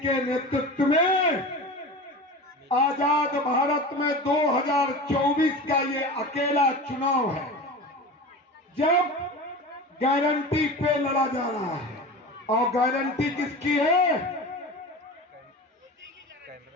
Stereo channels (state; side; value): normal; both; correlation 0.32